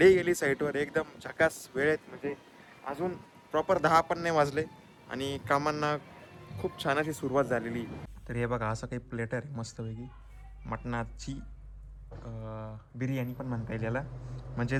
गेली साईटवर. एकदम झकास वेळेत, म्हणजे अजून प्रॉपर 10 पण नाही वाजले आणि कामांना खूप छान अशी सुरुवात झालेली. तर हे बघा, असं काही प्लेटर आहे मस्तपैकी मटणाची बिर्याणी पण म्हणता येईल याला. म्हणजे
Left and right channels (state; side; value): identical; both; correlation 1.00